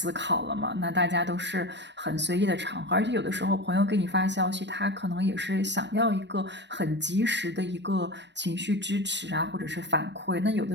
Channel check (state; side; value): late; left; 0.51 ms